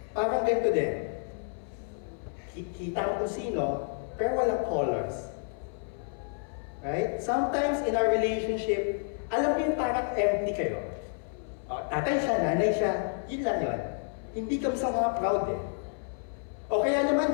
parang ganito din. Kita ko sino, pero walang colors. Right? Sometimes in our relationship, alam mo yung parang empty kayo. Tatay siya, nanay siya, yun lang yun. Hindi kami sa mga proud eh. O kaya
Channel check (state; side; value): silent; right; 58 dB below the other